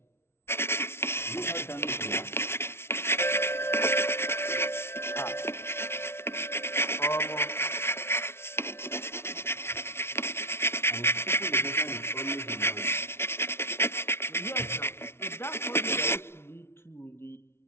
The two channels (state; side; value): late; right; 0.12 ms